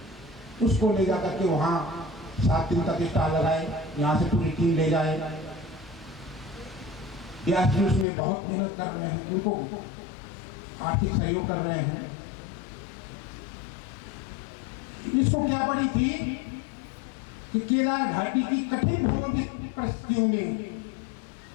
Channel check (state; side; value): drops out; right; at 8.1 s